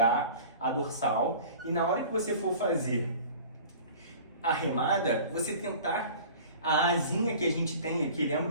a dorsal, e na hora que você for fazer a remada, você tentar a asinha que a gente tem aqui,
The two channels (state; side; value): inverted; both; correlation -0.43